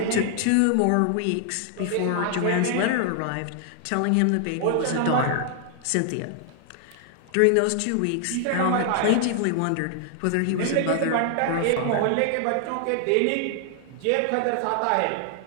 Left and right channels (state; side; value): different; both; correlation 0.00